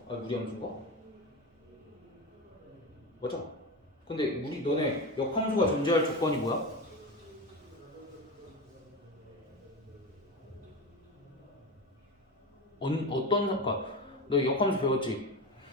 아니 무리함수인가? 맞아. 근데 너네 역함수가 존재할 조건이 뭐야? 어떤 그러니까 너 역함수 배웠지?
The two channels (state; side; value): normal; both; correlation 0.23